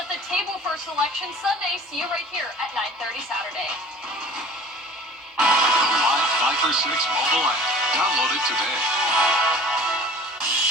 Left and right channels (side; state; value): both; normal; correlation 0.44